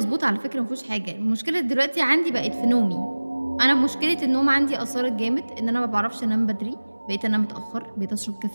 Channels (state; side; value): inverted; both; correlation -1.00